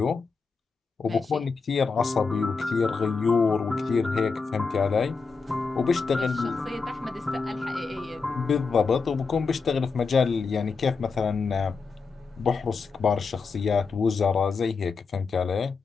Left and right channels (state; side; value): quieter; right; 4.8 dB